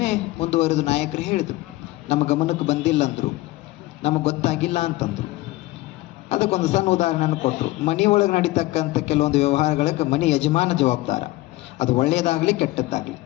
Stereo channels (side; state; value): right; quieter; 18.8 dB